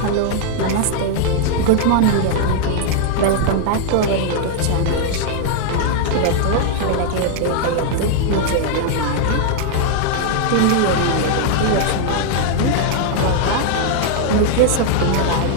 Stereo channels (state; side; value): different; both; correlation 0.00